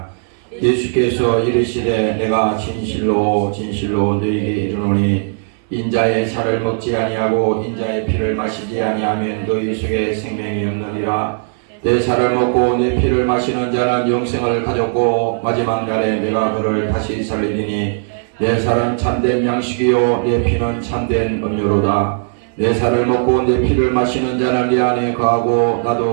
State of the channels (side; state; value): left; silent; 59 dB below the other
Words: 예수께서 이르시되 내가 진실로 진실로 너희에게 이르노니 인자의 살을 먹지 아니하고 인자의 피를 마시지 아니하면 너희 속에 생명이 없느니라. 내 살을 먹고 내 피를 마시는 자는 영생을 가졌고 마지막 날에 내가 그를 다시 살리리니 내 살은 참된 양식이요 내 피는 참된 음료로다. 내 살을 먹고 내 피를 마시는 자는 내 안에 거하고